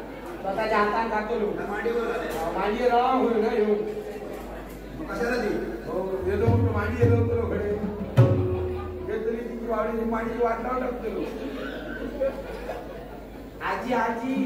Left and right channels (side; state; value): both; identical; correlation 1.00